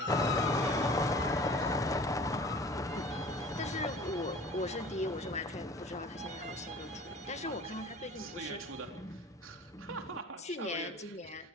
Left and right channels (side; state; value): both; normal; correlation 0.45